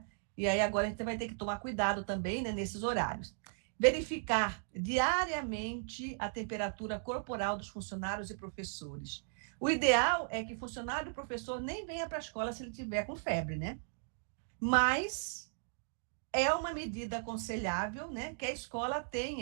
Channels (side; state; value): left; silent; digital silence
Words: E aí agora a gente vai ter que tomar cuidado também, né, nesses horários. Verificar diariamente a temperatura corporal dos funcionários e professores. O ideal é que funcionário e professor nem venha para a escola se ele tiver com febre, né? Mas é uma medida aconselhável, né, que a escola